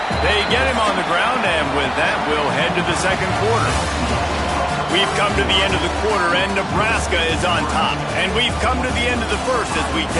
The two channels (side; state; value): both; identical; correlation 1.00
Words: They get him on the ground, and with that, we'll head to the second quarter. We've come to the end of the quarter, and Nebraska is on top. And we've come to the end of the first as we